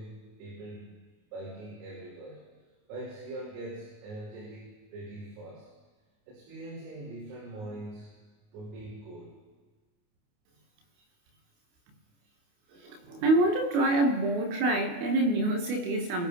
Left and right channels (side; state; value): left; late; 28 ms